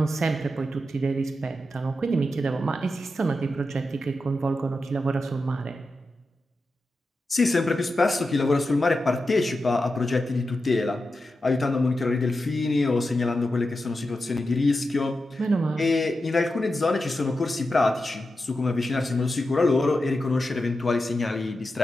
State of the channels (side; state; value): both; normal; correlation 0.90